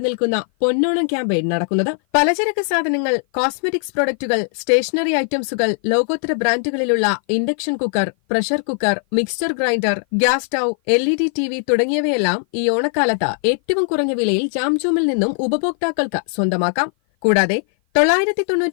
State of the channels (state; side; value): silent; right; 56 dB below the other